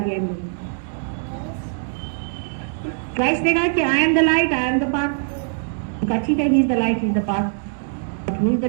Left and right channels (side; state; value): left; silent; digital silence